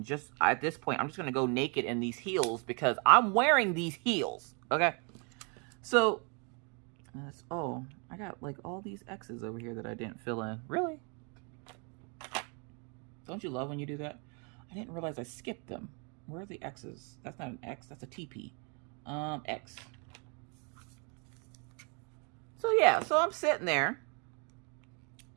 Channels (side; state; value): left; quieter; 35.2 dB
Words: just at this point, I'm just going to go naked in these heels because I'm wearing these heels. Okay. So, oh, I got like all these X's over here that I didn't fill in. Really? Don't you love when you do that? I didn't realize I skipped them. Where are the X's? That's not an X. That's a TP. X. So yeah, so I'm sitting there